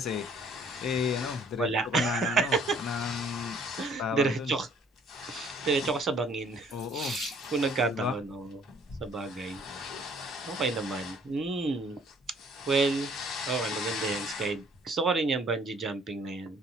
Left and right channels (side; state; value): both; normal; correlation 0.59